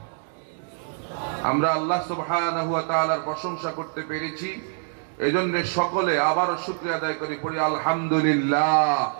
আমরা আল্লাহ সুবহানাহু ওয়া তাআলার প্রশংসা করতে পেরেছি, এজন্য সকলে আবারও শুকরিয়া আদায় করি, পড়ি আলহামদুলিল্লাহ।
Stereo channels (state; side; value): silent; left; 62 dB below the other